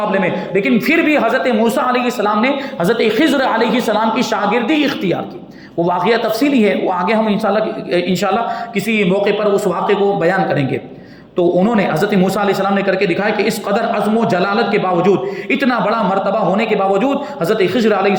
میں, لیکن پھر بھی حضرت موسیٰ علیہ السلام نے حضرت خضر علیہ السلام کی شاگردی اختیار کی. وہ واقعہ تفصیلی ہے, وہ آگے ہم انشاءاللہ کسی موقع پر اس واقعے کو بیان کریں گے. تو انہوں نے حضرت موسیٰ علیہ السلام نے کر کے دکھایا کہ اس قدر عزم و جلالت کے باوجود, اتنا بڑا مرتبہ ہونے کے باوجود حضرت خضر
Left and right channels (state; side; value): identical; both; correlation 1.00